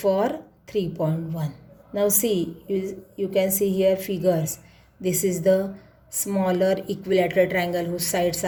3.1. Now see, you can see here figures. This is the smaller equilateral triangle whose sides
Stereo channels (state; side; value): identical; both; correlation 1.00